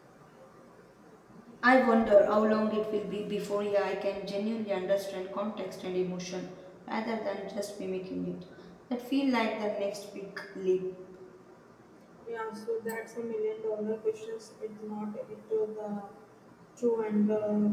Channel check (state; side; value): identical; both; correlation 1.00